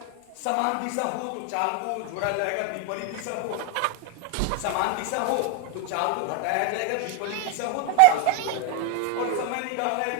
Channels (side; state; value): both; different; correlation 0.00